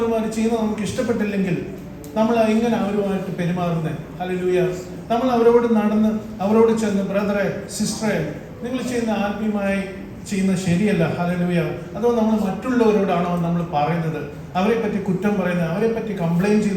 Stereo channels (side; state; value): both; identical; correlation 1.00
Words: ചെയ്യുന്നത് നമുക്ക് ഇഷ്ടപ്പെട്ടില്ലെങ്കിൽ നമ്മൾ എങ്ങനെ അവരുമായിട്ട് പെരുമാറുന്നത്? ഹല്ലേലൂയ. നമ്മൾ അവരോട് നടന്ന് അവരോട് ചെന്ന്, ബ്രദറെ സിസ്റ്ററെ നിങ്ങൾ ചെയ്യുന്ന ആത്മീയമായി ചെയ്യുന്നത് ശരിയല്ല. ഹല്ലേലൂയ. അതോ നമ്മൾ മറ്റുള്ളവരോടാണോ നമ്മൾ പറയുന്നത്? അവരെ പറ്റി കുറ്റം പറയുന്നത്, അവരെ പറ്റി കംപ്ലൈൻറ്റ്